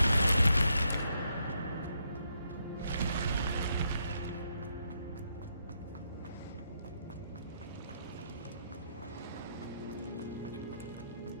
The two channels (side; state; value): both; inverted; correlation -0.77